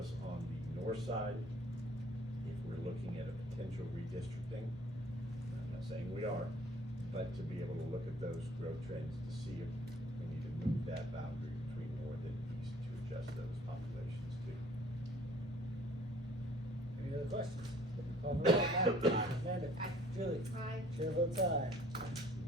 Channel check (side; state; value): both; normal; correlation 0.55